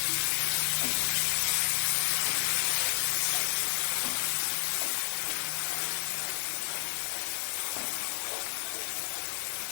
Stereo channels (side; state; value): right; silent; 57 dB below the other